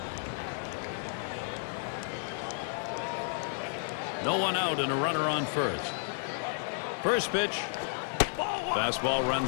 No one out and a runner on first. First pitch. Fastball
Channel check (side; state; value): right; silent; 56 dB below the other